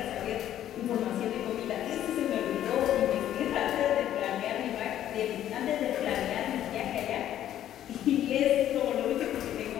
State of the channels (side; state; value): right; quieter; 11.6 dB